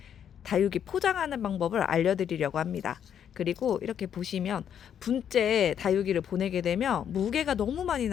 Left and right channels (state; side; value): quieter; right; 8.9 dB